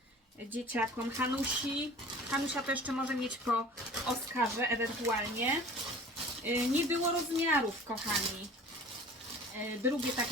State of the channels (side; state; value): both; normal; correlation 0.44